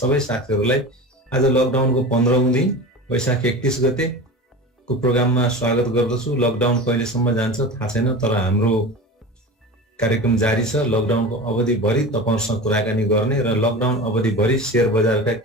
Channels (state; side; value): normal; both; correlation 0.31